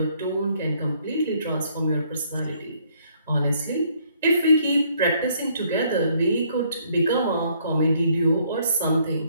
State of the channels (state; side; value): inverted; both; correlation -0.66